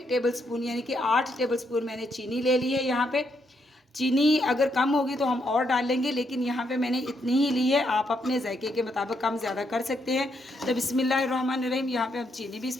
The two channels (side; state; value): both; normal; correlation 0.77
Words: टेबलस्पून यानी कि 8 टेबलस्पून मैंने चीनी ले ली है। यहाँ पे चीनी अगर कम होगी तो हम और डाल लेंगे, लेकिन यहाँ पे मैंने इतनी ही ली है। आप अपने जायके के मुताबिक कम ज़्यादा कर सकते हैं। तो बिस्मिल्लाहिर्रहमानिर्रहीम यहाँ पे हम चीनी भी